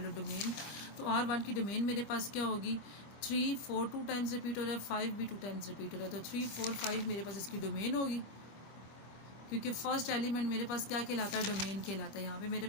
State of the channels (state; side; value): late; right; 26 ms